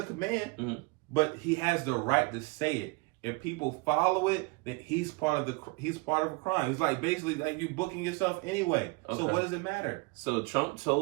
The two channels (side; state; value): left; quieter; 27.2 dB